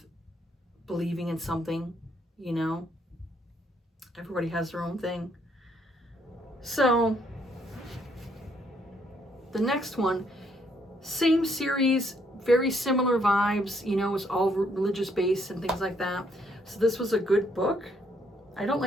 believing in something, you know? Everybody has their own thing. So the next one, same series, very similar vibes, you know, it's all religious based and things like that. So this was a good book. I don't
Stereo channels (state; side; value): normal; both; correlation 0.70